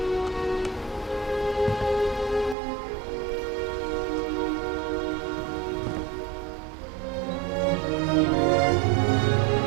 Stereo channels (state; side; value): drops out; left; at 2.6 s